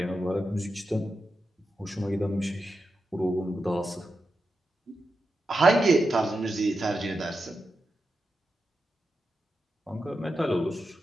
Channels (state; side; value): normal; both; correlation 0.89